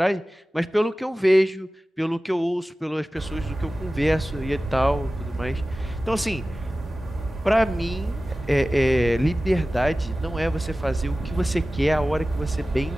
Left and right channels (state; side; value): normal; both; correlation 0.96